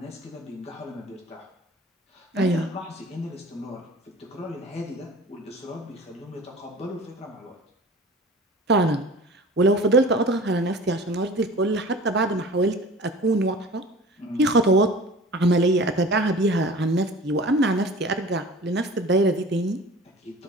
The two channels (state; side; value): normal; both; correlation 0.41